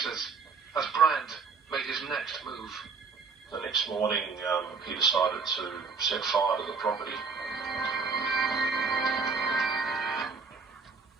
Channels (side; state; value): left; quieter; 5.0 dB